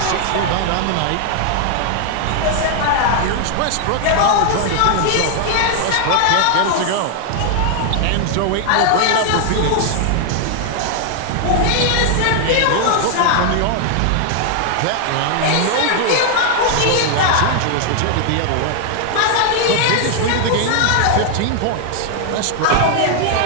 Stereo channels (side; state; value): both; different; correlation 0.00